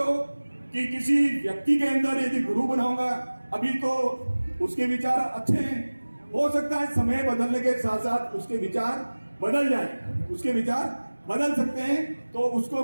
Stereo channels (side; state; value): both; inverted; correlation -1.00